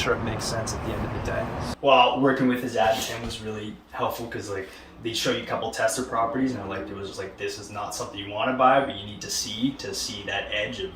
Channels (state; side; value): identical; both; correlation 1.00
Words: it makes sense at the end of the day. Well, working with Azad Tim was really helpful, because they show you a couple tester properties, and it was just this is not something you want to buy, but you need to see that edge of